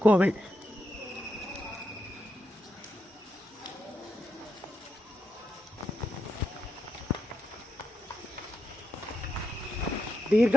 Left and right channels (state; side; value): normal; both; correlation 0.84